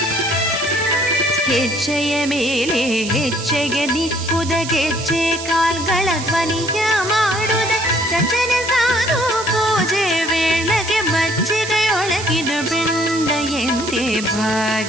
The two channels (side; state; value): right; noise; hiss, 10 dB below the sound